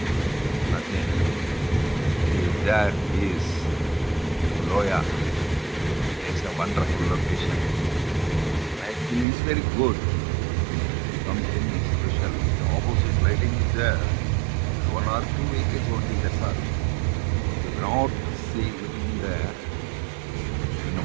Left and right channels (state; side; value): drops out; left; at 9.2 s